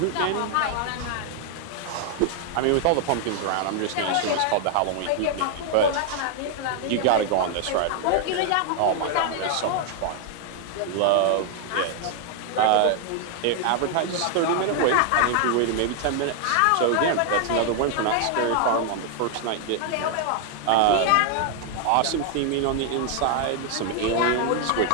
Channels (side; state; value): both; different; correlation 0.00